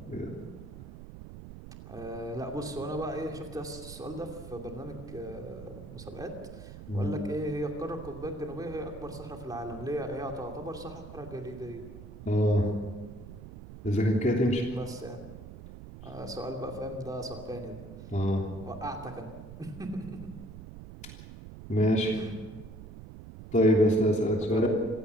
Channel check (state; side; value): noise; right; rumble, 13 dB below the sound